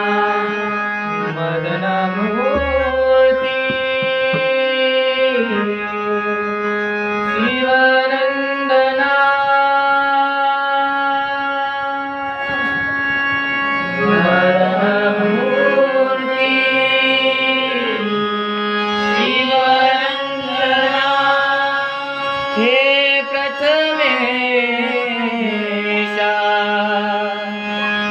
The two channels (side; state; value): both; identical; correlation 1.00